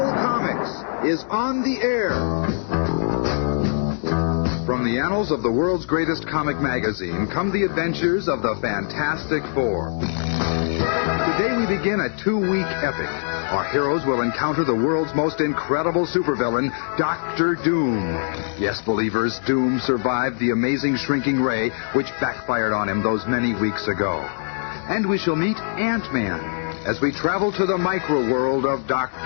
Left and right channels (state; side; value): silent; right; digital silence